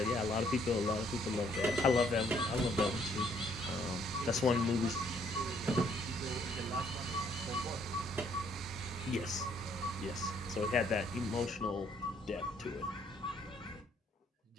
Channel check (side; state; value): both; normal; correlation 0.66